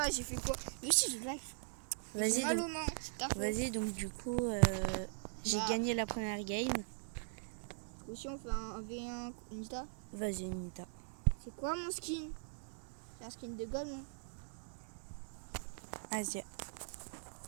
j'ai fait quoi? Mais si je like. Vas-y, mal donc, aux mains. vas-y, donc du coup, j'ai gagné la première game. Aussi on fait un V1 Nita. Vas-y, Nita. C'est quoi mon skin? C'est un skin de gomme, non? Vas-y.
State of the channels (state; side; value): silent; left; digital silence